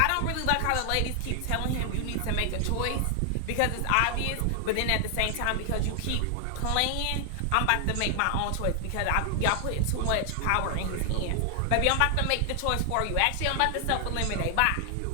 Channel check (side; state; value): both; different; correlation 0.00